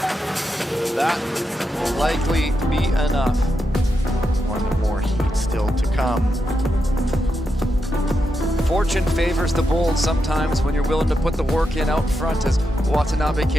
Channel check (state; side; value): normal; both; correlation 0.85